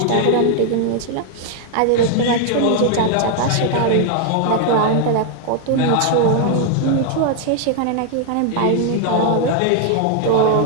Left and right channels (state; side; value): different; both; correlation 0.00